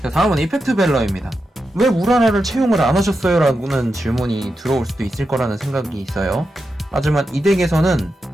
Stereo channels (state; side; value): normal; both; correlation 0.88